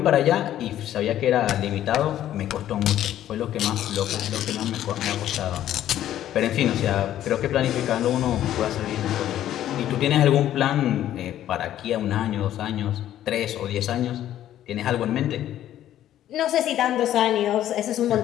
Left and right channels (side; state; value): right; quieter; 12.1 dB